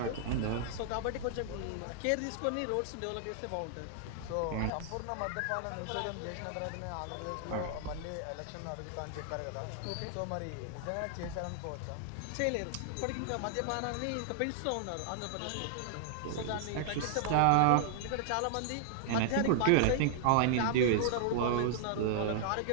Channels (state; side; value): different; both; correlation -0.01